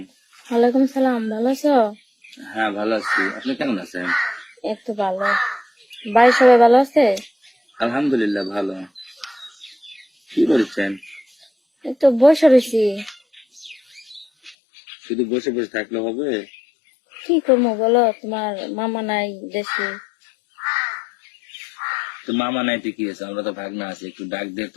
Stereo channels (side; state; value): right; drops out; at 14.6 s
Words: ওয়ালাইকুম সালাম। ভালো আছো? হ্যাঁ, ভালো আছি। আপনি কেমন আছেন? এই তো ভালো। বাড়ির সবাই ভালো আছে? আলহামদুলিল্লাহ ভালো। কি করছেন? এই তো বসে রয়েছি। শুধু বসে বসে থাকলে হবে? কি করবো বলো, তোমার মামা নাই দেশে। তো মামা নাইতে কি হয়েছে? আমরা তো ভাগনা আছি, একটু ডাক দিয়ে